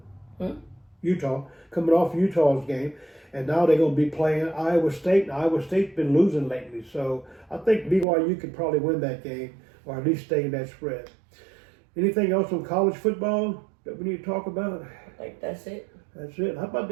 Utah. Coming off Utah's game, and now they're going to be playing Iowa State. And Iowa State's been losing lately, so I think BYU could probably win that game, or at least stay in that spread. Anything else on college football that we need to talk about? I think that's it. That's it. How about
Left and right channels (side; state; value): left; drops out; at 8.1 s